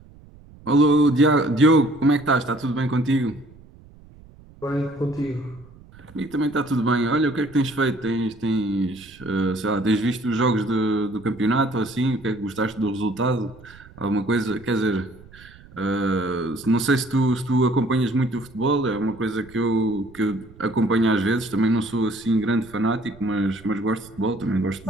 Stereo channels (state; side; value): noise; right; rumble, 23 dB below the sound